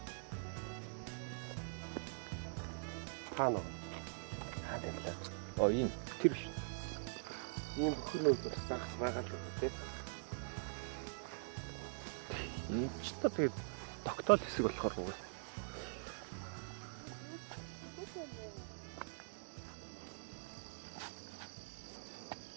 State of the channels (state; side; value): silent; left; digital silence